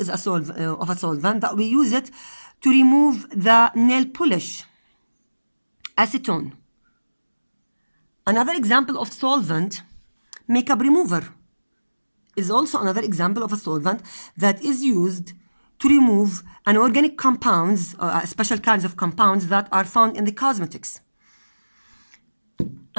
a solvent that we use it to remove the nail polish. Acetone. Another example of solvent, makeup remover, is also another example of a solvent that is used to remove inorganic compounds, special kinds of compounds that are found in the cosmetics.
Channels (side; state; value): both; inverted; correlation -1.00